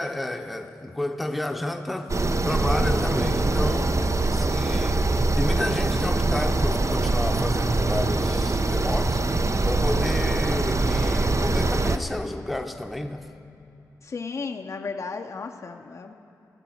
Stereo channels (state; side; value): normal; both; correlation 0.88